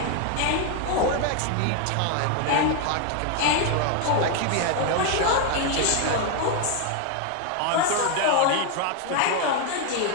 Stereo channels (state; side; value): different; both; correlation 0.01